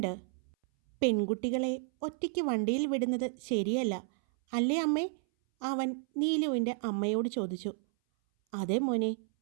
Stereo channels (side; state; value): left; silent; 57 dB below the other